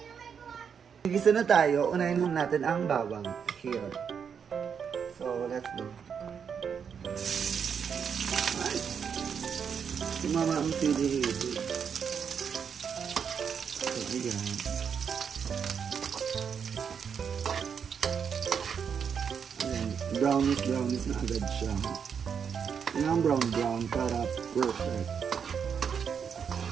Gisa na tayo. Unahin muna natin ang bawang. Here. So, let's go. Ay. Sumama ang sili. So, ayan. Brownish na agad siya. Yan ang brown para perfect.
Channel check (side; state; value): left; quieter; 7.0 dB